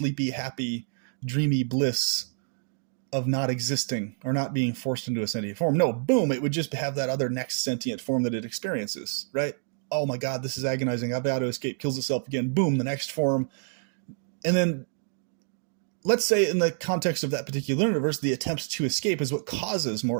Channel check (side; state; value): left; silent; digital silence